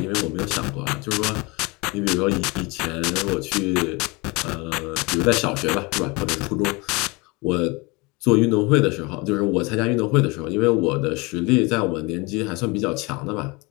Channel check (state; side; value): quieter; right; 26.3 dB